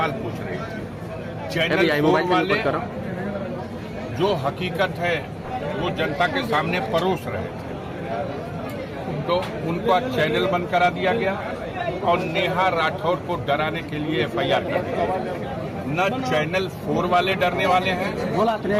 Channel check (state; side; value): identical; both; correlation 1.00